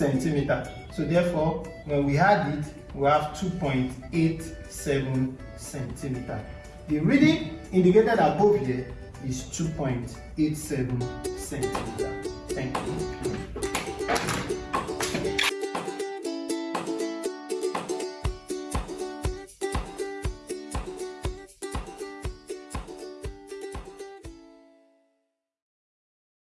So therefore, when we add it, we have 2.87 centimeter. The reading indicated above here is 2.87 centimeter. Thank you.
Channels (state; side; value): identical; both; correlation 1.00